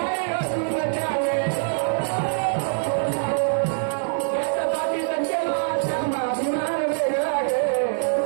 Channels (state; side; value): silent; left; digital silence